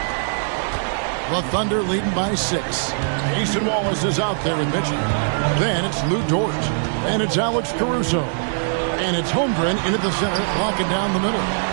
The Thunder leading by 6. Mason Wallace is out there with Mitchell. Then it's Lou Dort. And it's Alex Caruso. And it's Holmgren into the center, locking down the middle.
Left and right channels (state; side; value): silent; left; digital silence